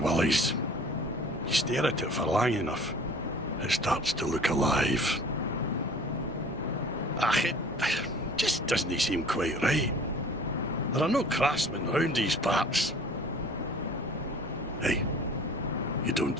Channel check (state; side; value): normal; both; correlation 0.47